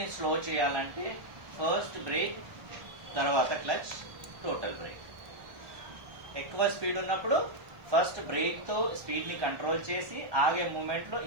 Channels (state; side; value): late; left; 1.3 ms